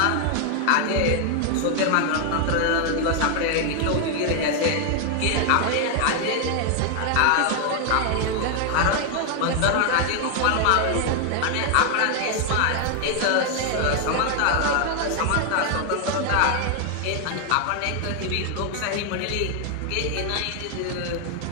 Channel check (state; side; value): different; both; correlation 0.00